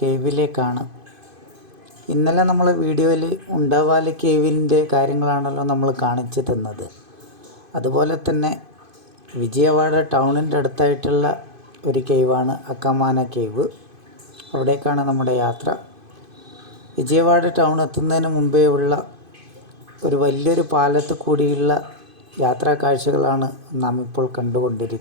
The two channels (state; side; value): late; left; 2.5 ms